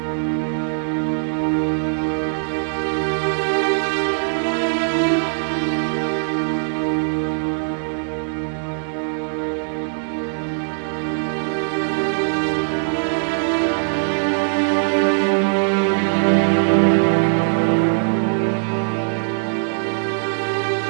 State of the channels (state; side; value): silent; left; digital silence